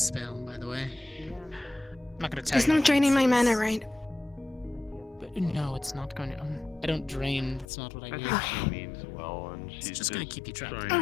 by the way. I'm not gonna tell It's you not what draining my it mana, says. right? But no, it's not going to... I don't drain, that's not what I I do. think she means well, and she's just gonna keep you trapped.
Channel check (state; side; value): drops out; right; at 7.7 s